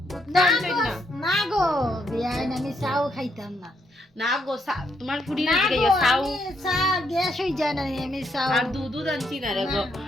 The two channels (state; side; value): normal; both; correlation 0.76